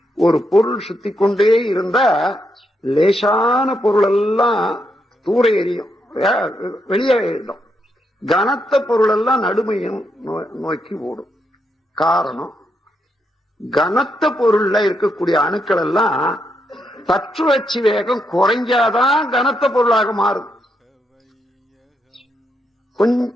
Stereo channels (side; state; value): both; normal; correlation 0.80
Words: ஒரு பொருள் சுத்தி கொண்டே இருந்தா லேசான பொருள் எல்லாம் தூர எரியும், வெளியேறிடும். கனத்த பொருள் எல்லாம் நடுமையும் நோக்கி ஓடும். காரணம், கனத்த பொருள்ல இருக்கக்கூடிய அணுக்கள் எல்லாம் தற்றுவச்சு வேகம் குறைஞ்சாதான் கனத்த பொருளாக மாறும்.